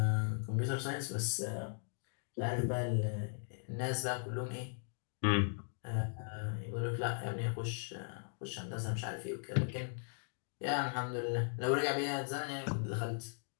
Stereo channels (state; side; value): silent; right; digital silence